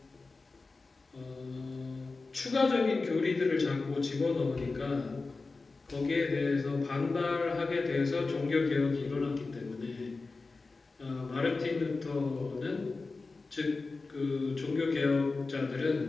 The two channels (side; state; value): right; quieter; 3.8 dB